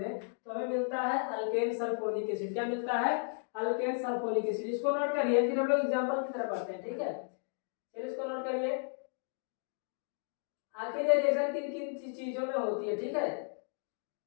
तो हमें मिलता है अल्केन सल्फोनिक एसिड। क्या मिलता है, अल्केन सल्फोनिक एसिड। इसको नोट करिए, फिर हम लोग एग्जांपल की तरफ पढ़ते हैं। ठीक है, फिर इसको नोट करिए, आखिर ये रिएक्शन किन किन चीजों में होती है। ठीक है,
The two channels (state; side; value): silent; right; 55 dB below the other